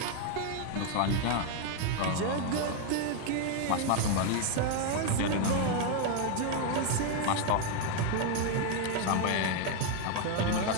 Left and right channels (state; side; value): different; both; correlation 0.01